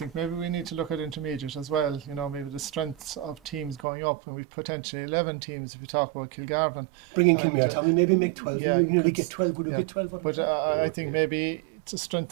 maybe we need to look at intermediate as well. Maybe the strengths of teams going up, and we've potentially 11 teams if you talk about Kilgarvan. Bring in Kilmare, Tommy, maybe make 12. You nearly get 12. Would you get 12? But I think maybe to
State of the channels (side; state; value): left; drops out; at 3.8 s